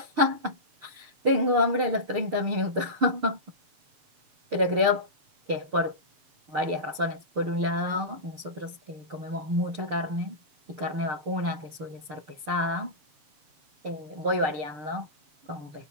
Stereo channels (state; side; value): late; left; 6.7 ms